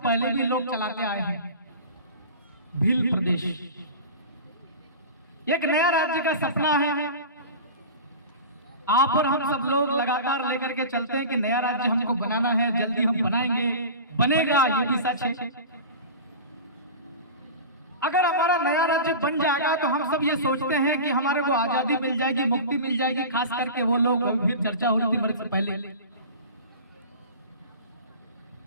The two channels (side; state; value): both; inverted; correlation -0.33